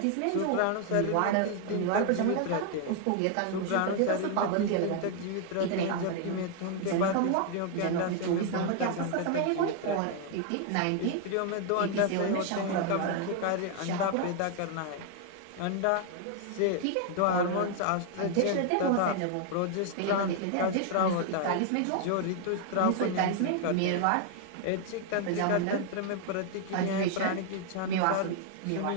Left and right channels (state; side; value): different; both; correlation 0.00